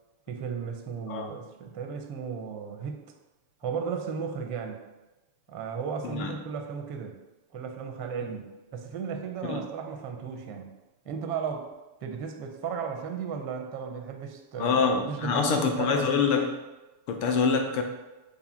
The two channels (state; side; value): late; right; 6.9 ms